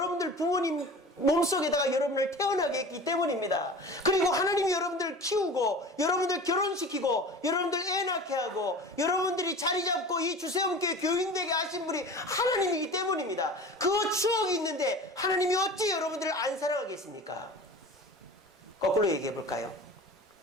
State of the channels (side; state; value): both; normal; correlation 0.37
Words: 부모님 몸속에다가 여러분을 태어나게 했기 때문입니다. 그리고 하나님이 여러분들 키우고 여러분들 결혼시키고 여러분들 애 낳게 하고 여러분들이 자리 잡고 이 주세움교회 교인되게 하신 분이 하나님이기 때문입니다. 그 추억이 있는데 하나님이 어찌 여러분들을 안 사랑하겠습니까? 거꾸로 얘기해 볼까요?